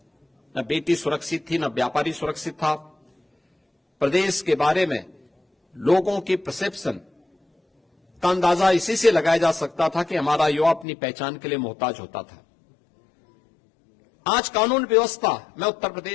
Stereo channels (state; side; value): drops out; right; at 10.9 s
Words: न बेटी सुरक्षित थी, न व्यापारी सुरक्षित था। प्रदेश के बारे में लोगों की परसेप्शन का अंदाजा इसी से लगाया जा सकता था कि हमारा युवा अपनी पहचान के लिए मोहताज होता था। आज कानून व्यवस्था में उत्तर